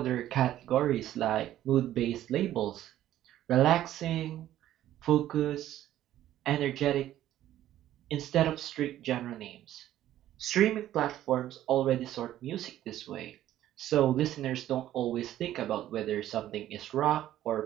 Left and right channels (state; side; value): quieter; left; 12.9 dB